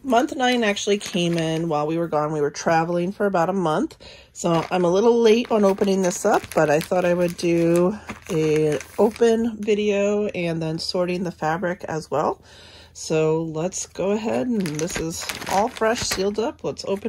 month 9 actually came in while we were gone. We were traveling for about a month. So I'm a little late on opening this up, but I thought I would do an open video and then sorting the fabric as well. So let's go ahead, and this is all fresh, sealed up. Let's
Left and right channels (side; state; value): both; identical; correlation 1.00